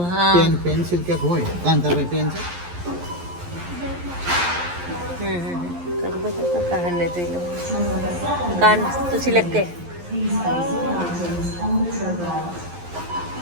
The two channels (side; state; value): left; late; 11 ms